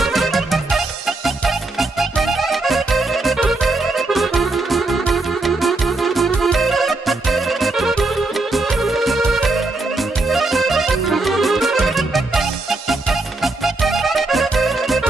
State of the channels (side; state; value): left; quieter; 3.1 dB